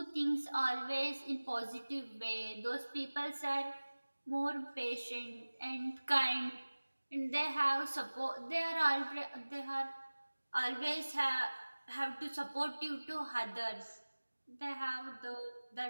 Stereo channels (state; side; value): inverted; both; correlation -1.00